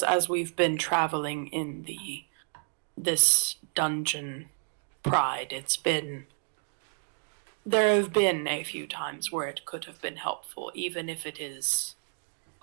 we've been traveling in this dungeon pride, there have been a few times where it could have been helpful, even if it is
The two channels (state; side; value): silent; left; 57 dB below the other